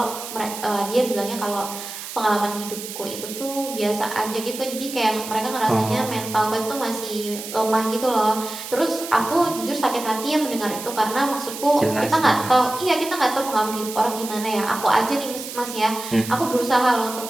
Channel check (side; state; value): right; noise; hiss, 10 dB below the sound